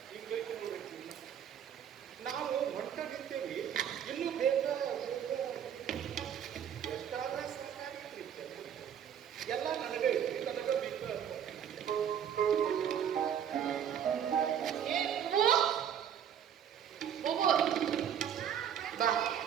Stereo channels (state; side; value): quieter; left; 8.9 dB